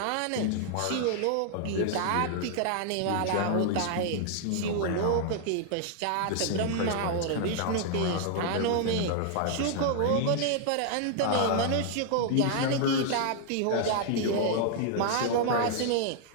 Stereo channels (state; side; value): different; both; correlation 0.00